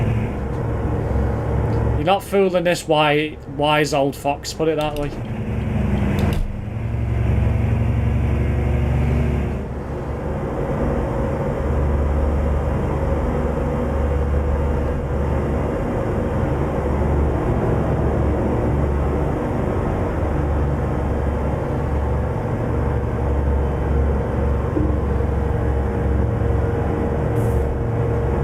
You're not fooling this wise old fox, put it that way.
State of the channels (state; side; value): identical; both; correlation 1.00